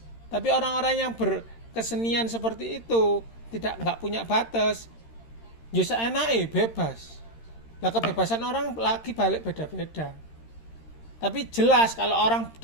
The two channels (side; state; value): right; late; 13 ms